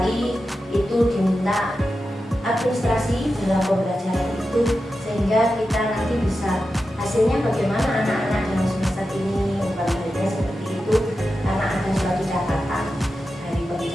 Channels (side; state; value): both; normal; correlation 0.91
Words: itu diminta administrasi dalam pembelajaran itu, sehingga kita nanti bisa hasilnya bagaimana anak-anak dalam semester ini, umpan baliknya seperti itu, karena ada suatu catatan dari